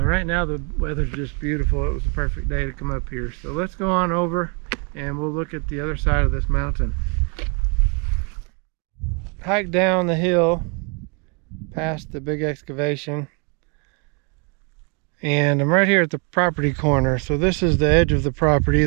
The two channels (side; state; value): left; quieter; 34.5 dB